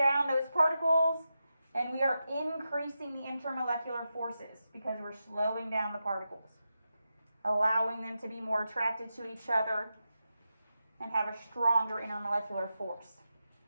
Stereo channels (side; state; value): both; inverted; correlation -0.89